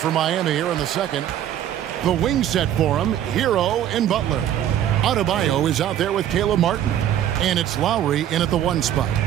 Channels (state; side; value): quieter; left; 11.0 dB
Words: Miami here in the second. The wing set for him, Hero and Butler. Adebayo is out there with Caleb Martin. And it's Lowry in at the one spot.